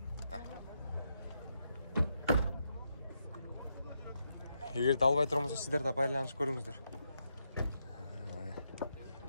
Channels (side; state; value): both; inverted; correlation -0.82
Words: Эгерде албай турмаса сиздер да байланышып көрүңүздөр.